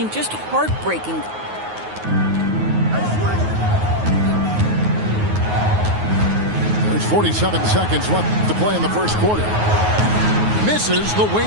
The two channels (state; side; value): late; left; 9.4 ms